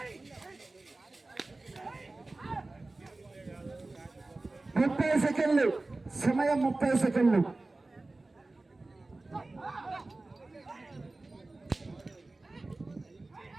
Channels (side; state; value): left; quieter; 3.1 dB